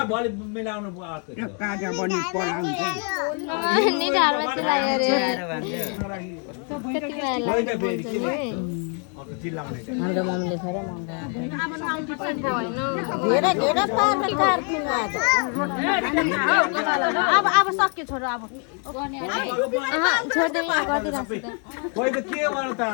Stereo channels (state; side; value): quieter; right; 39.5 dB